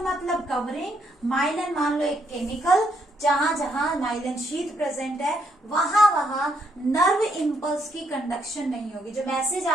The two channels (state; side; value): normal; both; correlation 0.74